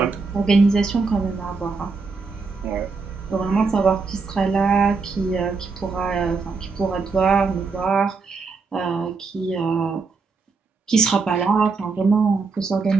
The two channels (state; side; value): quieter; left; 4.4 dB